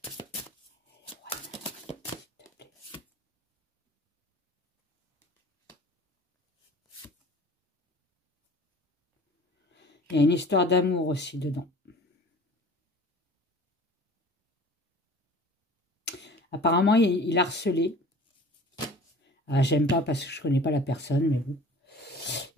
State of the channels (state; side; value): normal; both; correlation 0.45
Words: Il y a une histoire d'amour aussi dedans. Apparemment, il a harcelé. Ah, j'aime pas parce que je connais pas la personne, mais bon.